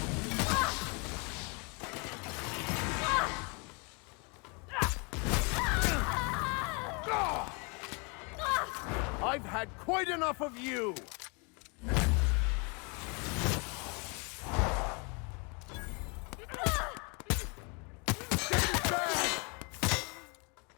I've had quite enough of you!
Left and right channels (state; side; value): quieter; right; 32.5 dB